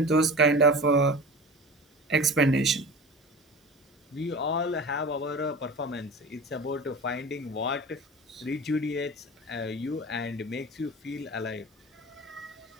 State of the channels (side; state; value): both; normal; correlation 0.34